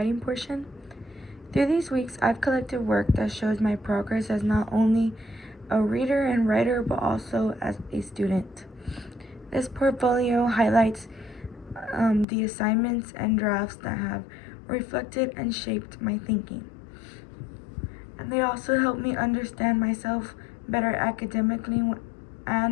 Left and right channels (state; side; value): drops out; right; at 12.2 s